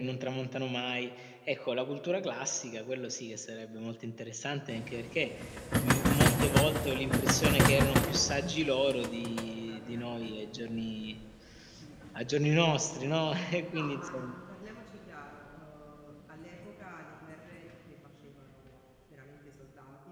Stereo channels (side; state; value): both; identical; correlation 1.00